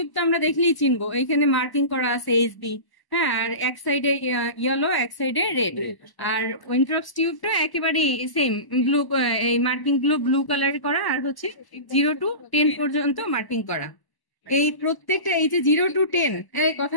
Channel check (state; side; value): late; right; 1.0 ms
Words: তো আমরা দেখলেই চিনবো, এইখানে মার্কিং করা আছে এসবি। হ্যাঁ, আর এক সাইডে ইয়েলো, এক সাইডে রেড। আর উইন্ট্রপস টিউবটা একেবারে সেম, ব্লু, এই মার্কিং গুলো ব্লু কালার করা, আর হচ্ছে 0 to 10 পর্যন্ত মার্কিং করা। এই প্রত্যেকটা এই যে 0 to 10, এই কথা